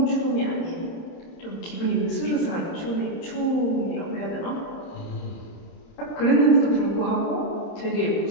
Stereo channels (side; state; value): right; late; 30 ms